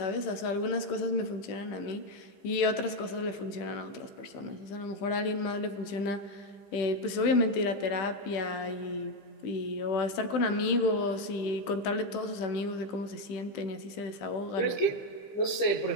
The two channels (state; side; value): late; right; 15 ms